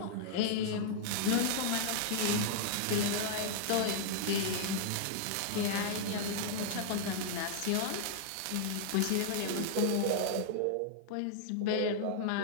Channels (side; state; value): both; different; correlation -0.01